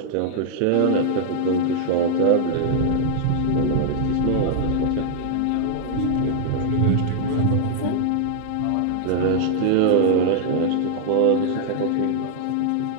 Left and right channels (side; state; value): both; different; correlation -0.01